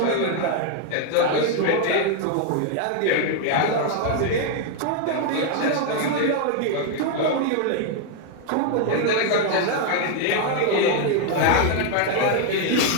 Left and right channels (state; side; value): different; both; correlation 0.00